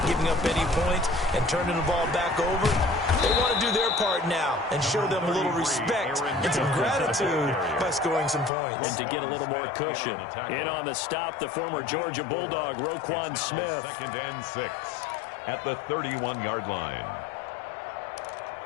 giving up any points, and turning the ball back over. They want to do their part now and show them a little respect and some gratitude by scoring some points. And to get a little more cushion. In on the stop, the former Georgia Bulldog, Roquan Smith. 2nd and 6 at the 31-yard line.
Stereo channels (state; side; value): drops out; right; at 8.5 s